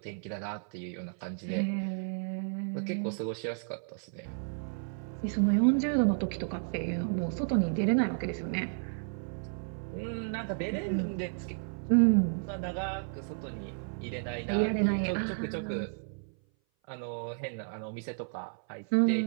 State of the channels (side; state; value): left; silent; 56 dB below the other